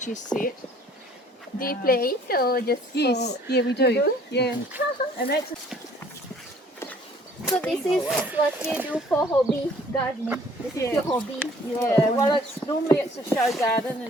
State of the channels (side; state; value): both; normal; correlation 0.56